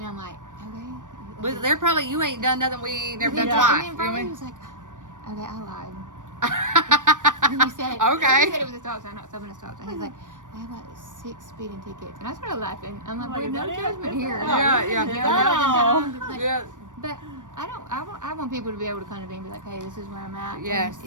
I'm like, okay. But they're probably, you ain't done nothing we ain't never done Yeah. twice. And then You know finally what I he mean? was like, okay, I lied. And he said, Okay. he said it was a stop sign, not stopping a stop sign. He's like, I have like 6 speeding tickets. And I started laughing. I'm like, Like, well, is no that it? judgment Is here. that it? Yeah, You know, yeah. that was like, Yeah. But I want people to be able to come to me and be like, hey, this is where I'm at. Yes. And,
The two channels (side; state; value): left; late; 0.87 ms